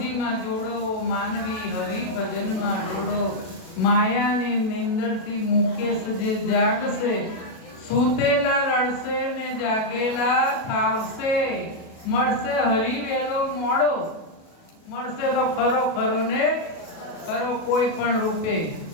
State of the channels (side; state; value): right; late; 37 ms